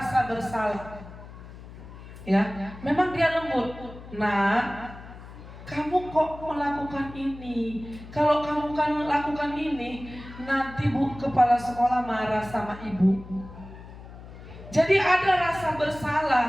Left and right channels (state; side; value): noise; left; hum, 16 dB below the sound